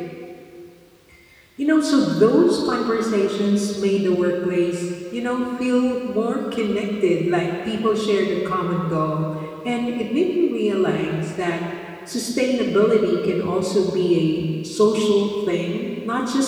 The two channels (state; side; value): identical; both; correlation 1.00